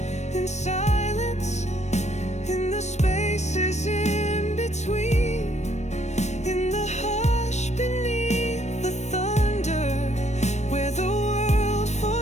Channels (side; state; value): right; late; 0.33 ms